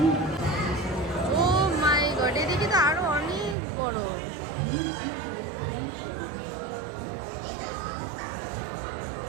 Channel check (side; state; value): left; drops out; at 3.6 s